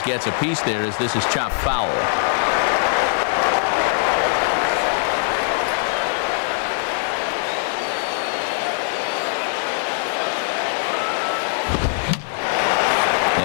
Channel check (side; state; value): right; silent; 60 dB below the other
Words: gets a piece there as this is chopped foul.